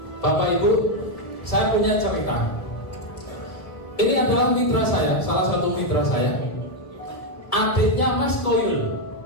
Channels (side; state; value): right; late; 1.7 ms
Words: Bapak Ibu, saya punya cerita. Ini adalah mitra saya, salah satu mitra saya, adiknya Mas Koyul.